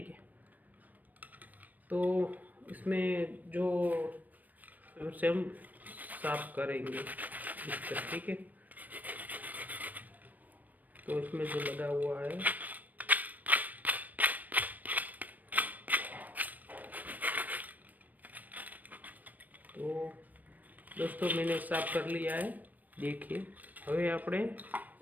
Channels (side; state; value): left; late; 0.081 ms